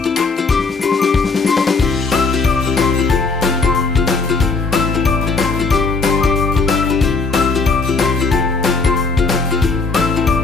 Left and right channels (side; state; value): right; quieter; 4.2 dB